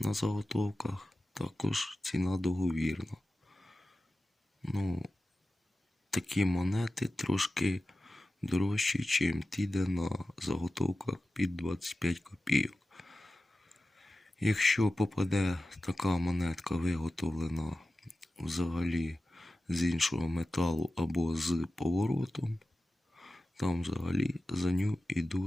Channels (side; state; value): both; normal; correlation 0.94